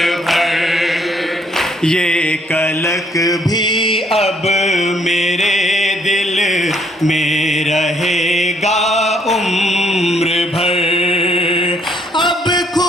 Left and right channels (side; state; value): both; normal; correlation 0.67